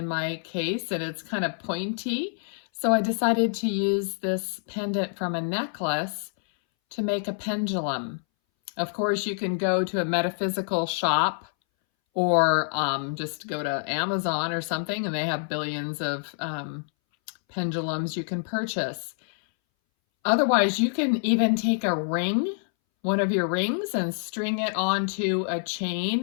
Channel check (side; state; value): right; silent; 60 dB below the other